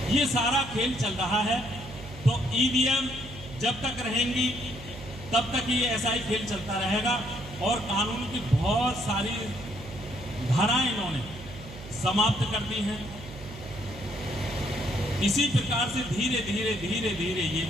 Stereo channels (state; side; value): noise; right; hum, 14 dB below the sound